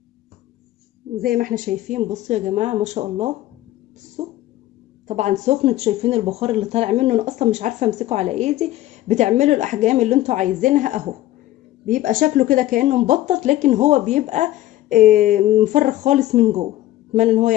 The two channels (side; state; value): right; quieter; 15.0 dB